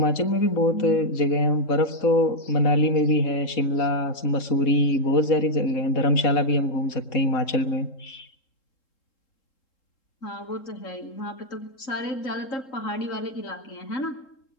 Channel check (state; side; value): late; right; 3.7 ms